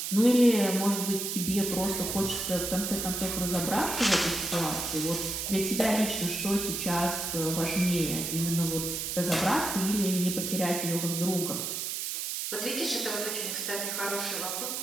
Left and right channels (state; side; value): noise; right; hiss, 3 dB below the sound